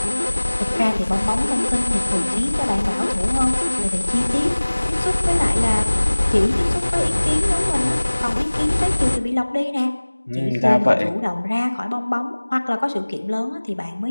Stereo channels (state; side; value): inverted; both; correlation -1.00